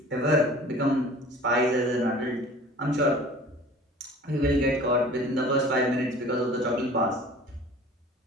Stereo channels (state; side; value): normal; both; correlation 0.45